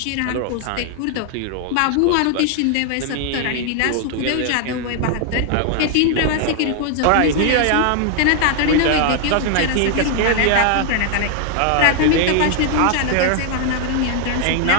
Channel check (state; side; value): different; both; correlation 0.00